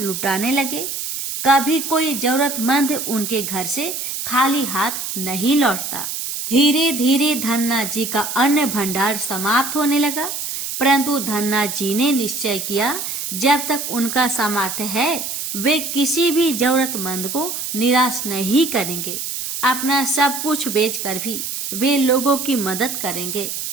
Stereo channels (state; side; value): noise; right; hiss, 5 dB below the sound